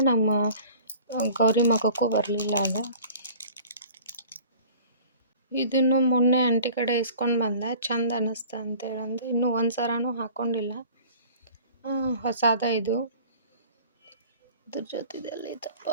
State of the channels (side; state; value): both; inverted; correlation -0.47